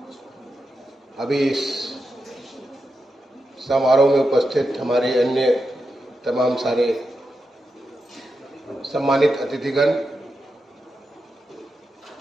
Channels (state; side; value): normal; both; correlation 0.88